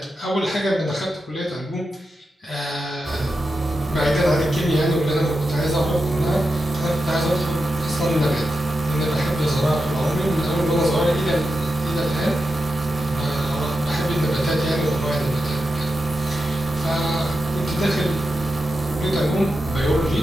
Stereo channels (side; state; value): both; normal; correlation 0.89